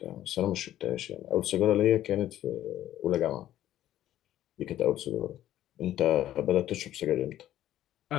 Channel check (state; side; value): quieter; right; 12.7 dB